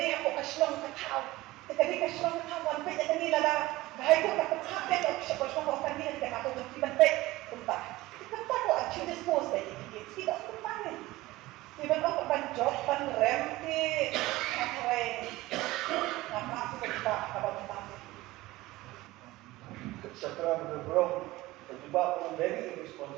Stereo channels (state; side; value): quieter; left; 18.6 dB